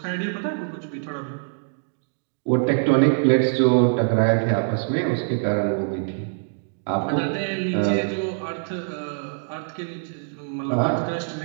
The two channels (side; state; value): left; silent; digital silence